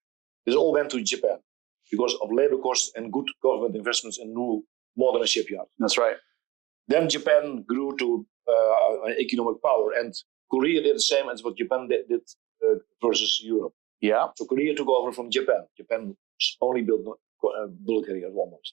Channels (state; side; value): quieter; left; 19.2 dB